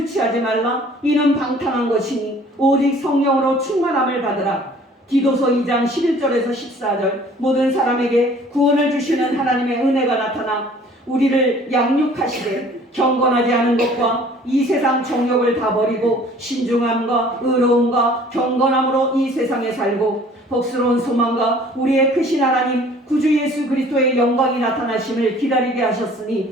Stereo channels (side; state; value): both; normal; correlation 0.52